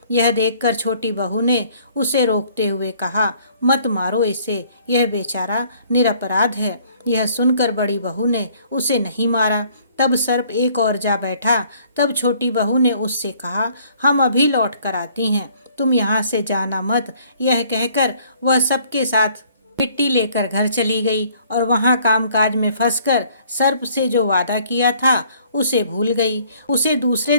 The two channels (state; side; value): inverted; both; correlation -0.60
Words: यह देखकर छोटी बहू ने उसे रोकते हुए कहा, मत मारो इसे, यह बेचारा निरपराध है। यह सुनकर बड़ी बहू ने उसे नहीं मारा। तब सर्प एक और जा बैठा। तब छोटी बहू ने उससे कहा, हम अभी लौट कर आती हैं, तुम यहाँ से जाना मत। यह कहकर वह सबके साथ मिट्टी लेकर घर चली गई और वहाँ कामकाज में फंसकर सर्प से जो वादा किया था उसे भूल गई। उसे दूसरे